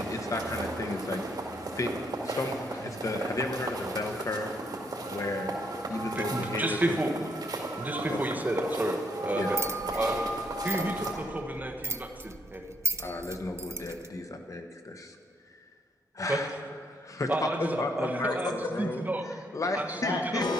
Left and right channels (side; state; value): both; normal; correlation 0.71